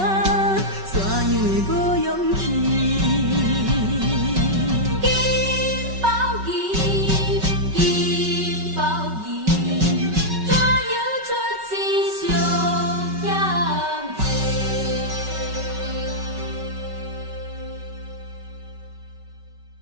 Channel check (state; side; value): late; left; 5.3 ms